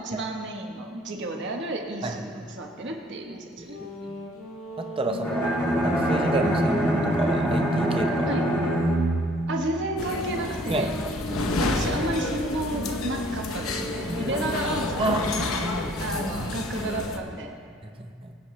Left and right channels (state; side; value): normal; both; correlation 0.58